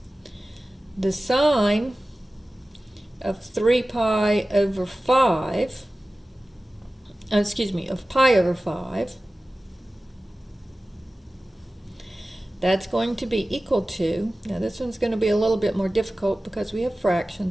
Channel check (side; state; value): both; normal; correlation 0.96